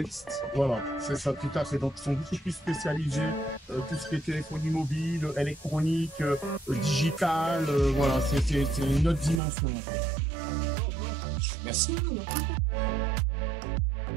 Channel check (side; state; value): left; drops out; at 9.4 s